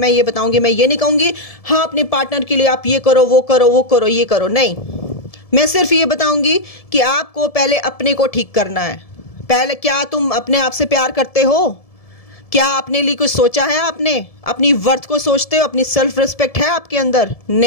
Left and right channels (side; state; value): right; late; 1.7 ms